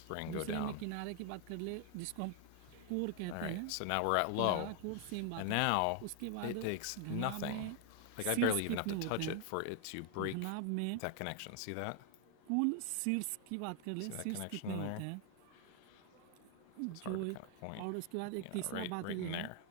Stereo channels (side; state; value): both; different; correlation 0.00